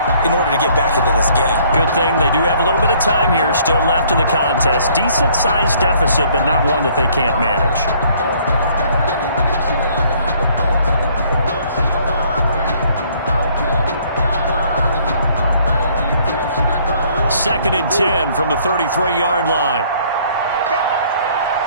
in order to get back into this game. Good thing they do have a little bit of time here still left in the contest. Decent-sized deficit, but not one that they can't manage. Second and 10 from the 33-yard line.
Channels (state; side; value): inverted; both; correlation -0.61